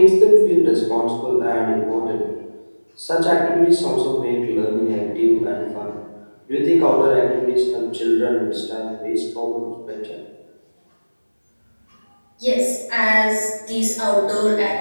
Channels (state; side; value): inverted; both; correlation -1.00